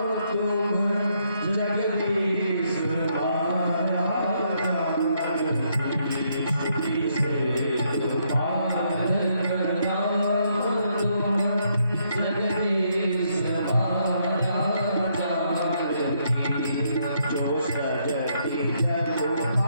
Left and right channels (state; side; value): inverted; both; correlation -0.74